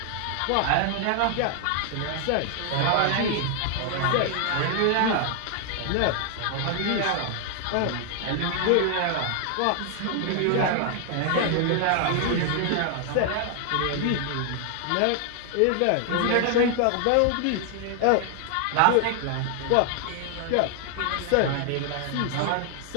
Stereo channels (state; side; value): different; both; correlation 0.00